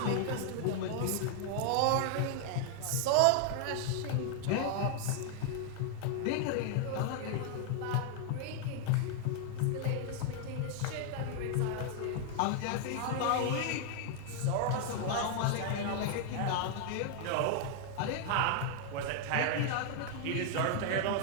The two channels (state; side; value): different; both; correlation 0.00